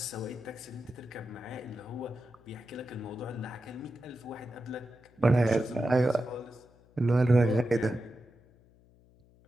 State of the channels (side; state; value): left; noise; hum, 29 dB below the sound